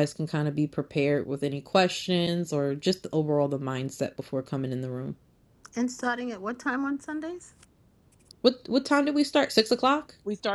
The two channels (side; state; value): both; identical; correlation 1.00